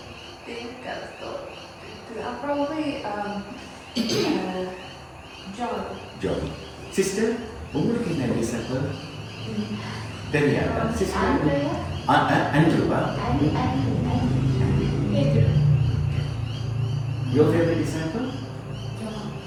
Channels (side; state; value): both; identical; correlation 1.00